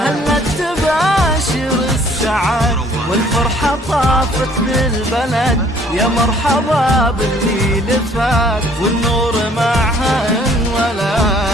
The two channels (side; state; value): both; normal; correlation 0.58